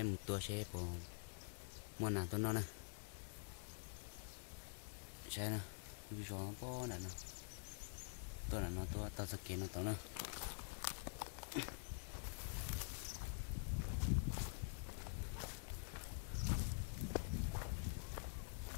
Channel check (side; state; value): right; silent; digital silence